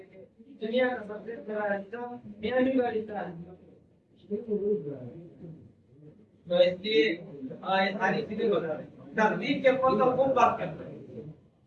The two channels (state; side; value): identical; both; correlation 1.00